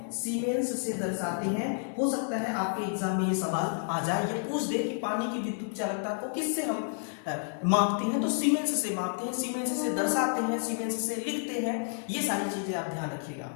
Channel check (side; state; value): right; silent; 58 dB below the other